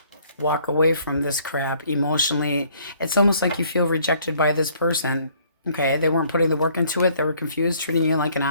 Walk away from this crap emotionally. It's almost like you feel rejected by this person. Okay, they weren't putting the work into it. They were confused, treating you like an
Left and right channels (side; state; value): both; inverted; correlation -0.61